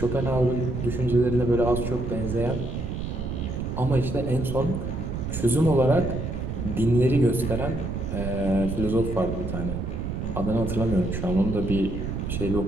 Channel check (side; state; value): right; noise; rumble, 4 dB below the sound